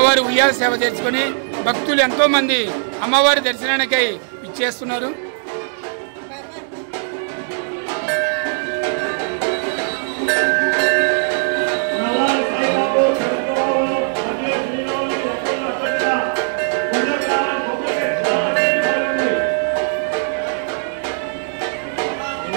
ఉయ్యాల సేవ చేసుకుని భక్తులు ఎంతో మంది అమ్మవారి దర్శనానికై ఇచ్చేస్తున్నారు.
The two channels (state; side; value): silent; left; digital silence